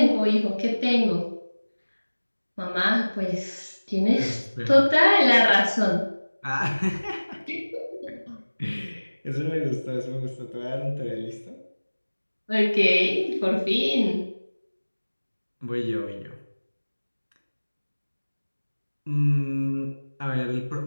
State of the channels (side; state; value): both; inverted; correlation -1.00